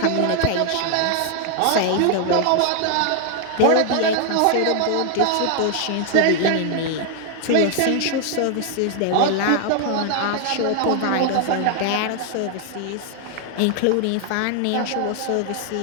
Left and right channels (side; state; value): both; different; correlation 0.00